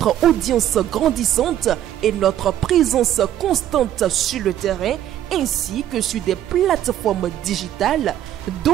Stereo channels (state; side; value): quieter; left; 11.7 dB